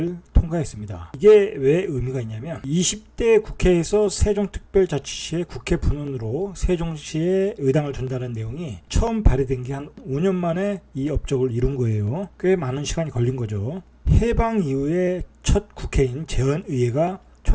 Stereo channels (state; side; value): identical; both; correlation 1.00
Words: 통과했습니다. 이게 왜 의미가 있냐면 20대 국회에서 세종특별자치시의 국회 분원으로 세종시에 의당을 둔다는 내용이 처음 발의된 게 한 5년 만에 이 업적을 이룬 거예요. 꽤 많은 시간이 걸린 거죠. 해방 이후에 첫 국회인 재헌의회가